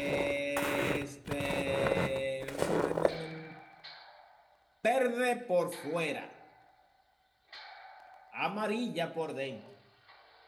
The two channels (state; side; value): identical; both; correlation 1.00